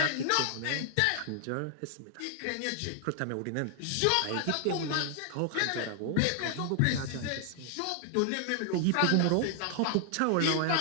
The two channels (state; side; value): different; both; correlation 0.00